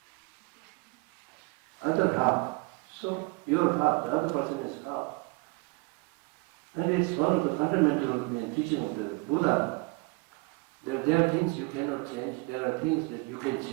Other half. So your half, the other person is half. And it's one of the fundamental teaching of the Buddha. There are things you cannot change, there are things that you can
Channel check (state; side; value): quieter; left; 27.3 dB